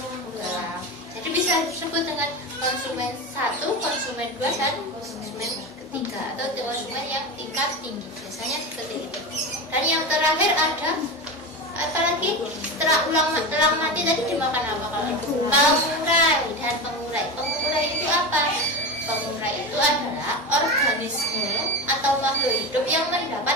Ular. Jadi bisa disebut dengan konsumen 1, konsumen 2, dan konsumen ketiga, atau konsumen yang tingkat tinggi. Biasanya seperti itu. Dan yang terakhir ada apa lagi? Setelah elang mati tadi dimakan apa kalau itu? Pengurai dan pengurai. Pengurai itu apa? Pengurai itu adalah organisme atau makhluk hidup yang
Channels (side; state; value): both; normal; correlation 0.23